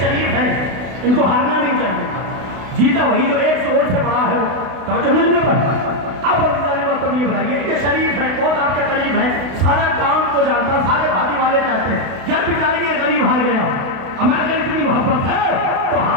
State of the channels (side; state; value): left; late; 32 ms